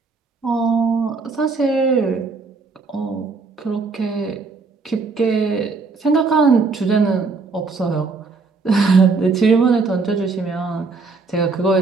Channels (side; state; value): left; quieter; 4.3 dB